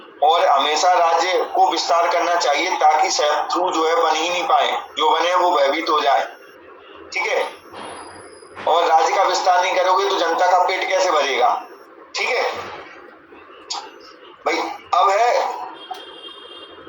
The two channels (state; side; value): identical; both; correlation 1.00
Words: और हमेशा राज्य को विस्तार करना चाहिए ताकि शत्रु जो है बन ही नहीं पाए, जो बने वो भयभीत हो जाए, ठीक है। और राज्य का विस्तार नहीं करोगे तो जनता का पेट कैसे भरेगा, ठीक है भाई। अब है